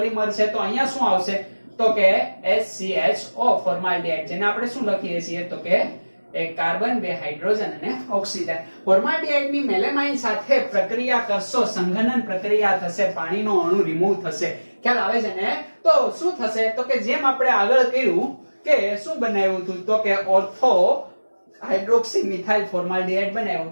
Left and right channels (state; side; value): inverted; both; correlation -1.00